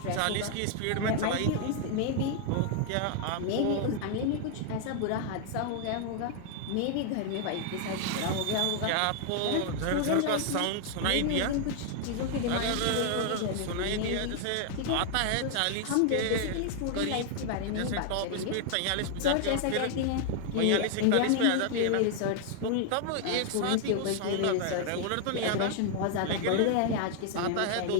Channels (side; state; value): both; different; correlation 0.00